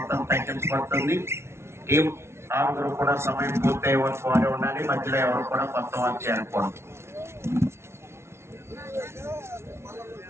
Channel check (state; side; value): late; left; 0.13 ms